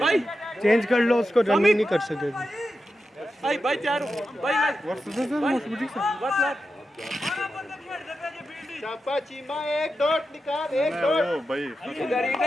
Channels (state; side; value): normal; both; correlation 0.90